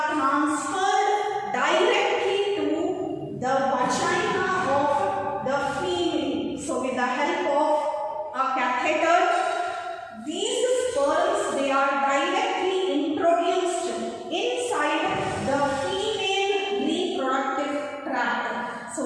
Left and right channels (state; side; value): identical; both; correlation 1.00